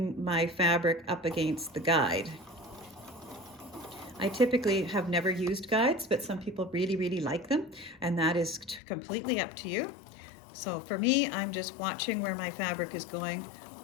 my fabric up against the guide. I typically have never used guides, but some people really like them, and that is completely up to you. So for me, I'm just watching where my fabric is going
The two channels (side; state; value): right; drops out; at 8.8 s